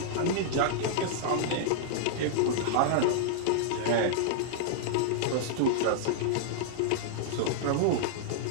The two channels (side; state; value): both; different; correlation -0.01